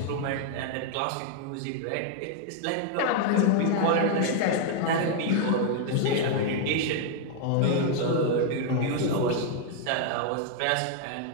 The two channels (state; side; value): different; both; correlation 0.00